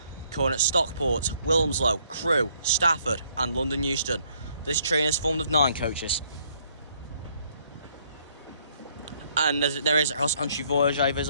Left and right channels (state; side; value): inverted; both; correlation -0.67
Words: Calling at Stockport, Wilmslow, Crewe, Stafford and London Euston. This train is formed of 9 coaches. And there is a cross-country voyage